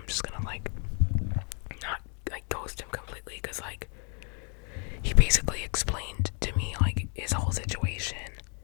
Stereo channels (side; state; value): right; quieter; 38.8 dB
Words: just gonna, like, not, like, ghost him completely, because, like, he basically explained to me, like, his whole situation,